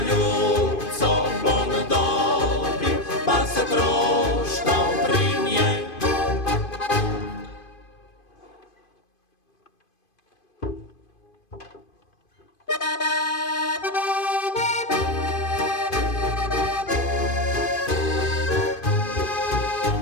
ljubco bom dobil, pa se troštal pri njej.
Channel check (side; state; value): right; late; 2.5 ms